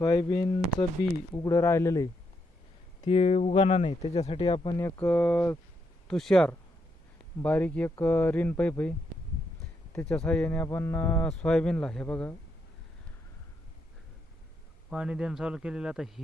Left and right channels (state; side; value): normal; both; correlation 0.79